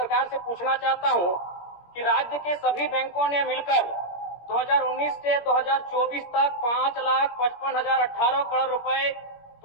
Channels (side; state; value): right; late; 17 ms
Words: से पूछना चाहता हूं कि राज्य के सभी बैंकों ने मिलकर 2019 से 2024 तक 5,55,018 करोड़ रुपए